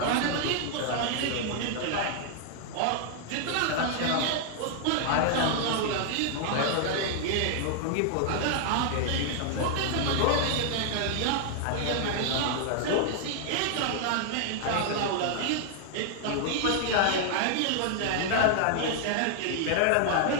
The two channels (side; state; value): both; different; correlation 0.00